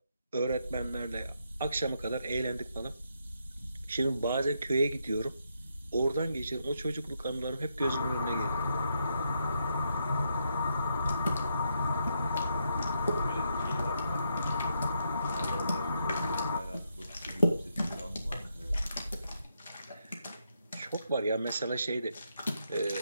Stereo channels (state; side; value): inverted; both; correlation -0.79